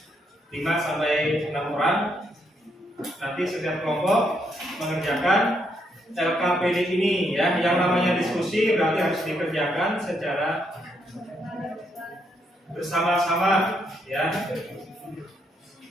5 sampai 6 orang. Nanti setiap kelompok mengerjakan LKPD ini, ya. Yang namanya diskusi berarti harus dikerjakan secara bersama-sama, ya.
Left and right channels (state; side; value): normal; both; correlation 0.76